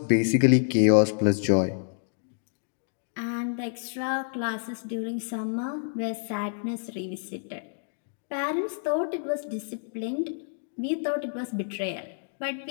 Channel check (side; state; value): right; silent; digital silence